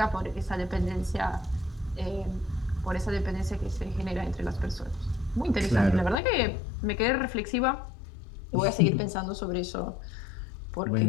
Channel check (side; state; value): right; drops out; at 6.2 s